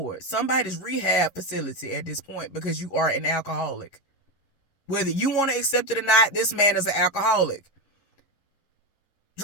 somebody's rehab facility at this point, because you are an alcoholic. Whether you want to accept it or not, this man is an alcoholic.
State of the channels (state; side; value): late; right; 11 ms